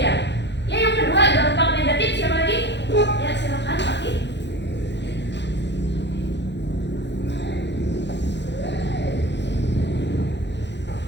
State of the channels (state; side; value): late; right; 0.51 ms